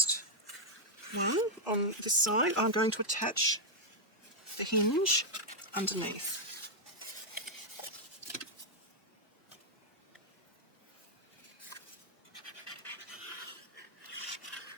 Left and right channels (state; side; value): normal; both; correlation -0.03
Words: one on this side, I'm going to attach the hinge underneath.